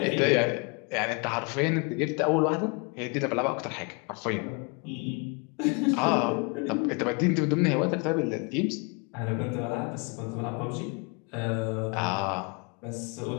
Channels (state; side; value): quieter; right; 32.8 dB